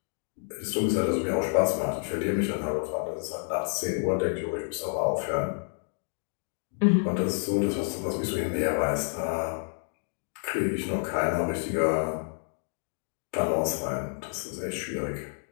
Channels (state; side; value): silent; right; 58 dB below the other